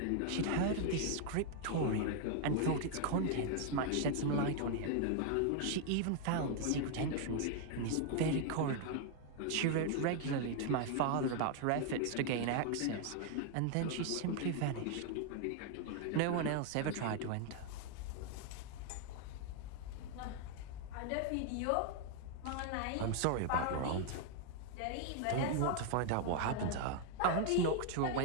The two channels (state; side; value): different; both; correlation 0.00